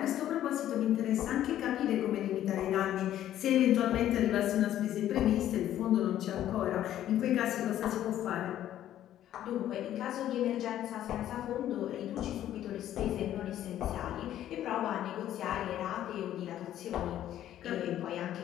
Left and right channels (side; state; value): right; quieter; 12.0 dB